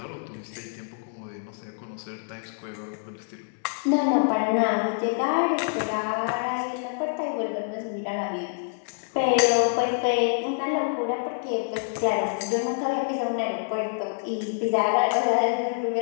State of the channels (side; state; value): right; silent; digital silence